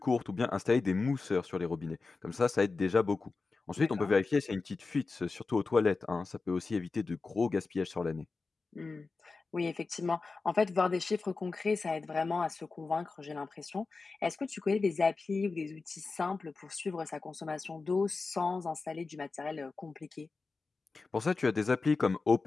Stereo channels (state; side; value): quieter; right; 4.1 dB